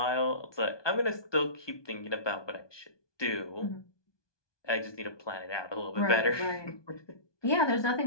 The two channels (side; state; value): right; late; 1.2 ms